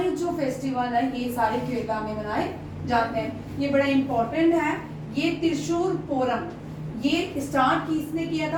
जो फेस्टिवल है ये सारे केरला में मनाए जाते हैं। ये बड़ा इंपॉर्टेंट है। ये त्रिशूर पोरम ये स्टार्ट किसने किया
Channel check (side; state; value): both; identical; correlation 1.00